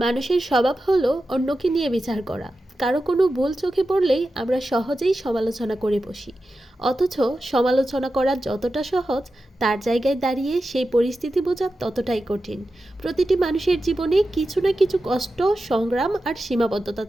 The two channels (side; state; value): both; normal; correlation 0.92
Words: মানুষের স্বভাব হলো অন্যকে নিয়ে বিচার করা। কারো কোনো ভুল চোখে পড়লেই আমরা সহজেই সমালোচনা করে বসি। অথচ সমালোচনা করা যতটা সহজ, তার জায়গায় দাঁড়িয়ে সেই পরিস্থিতি বোঝা ততটাই কঠিন। প্রতিটি মানুষের জীবনে কিছু না কিছু কষ্ট, সংগ্রাম আর সীমাবদ্ধতা